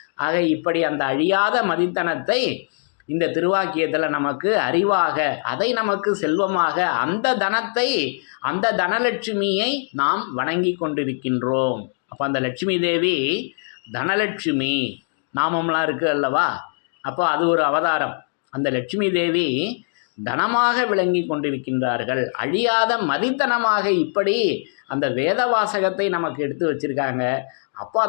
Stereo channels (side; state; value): right; silent; 64 dB below the other